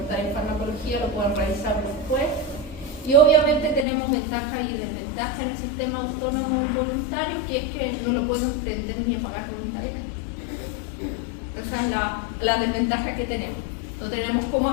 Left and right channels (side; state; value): right; drops out; at 3.9 s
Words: en farmacología, lo pueden realizar después. Y obviamente tenemos ventajas y desventajas en el sistema autónomo involuntario, que es que no lo podemos prender ni apagar voluntariamente. Esa es la desventaja que tenemos. No tenemos cómo